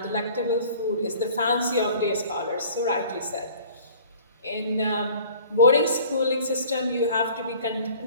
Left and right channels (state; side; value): inverted; both; correlation -0.49